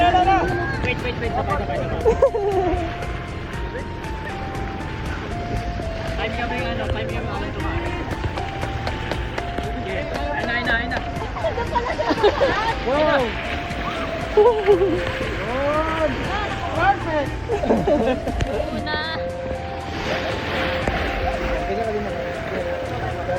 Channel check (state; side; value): identical; both; correlation 1.00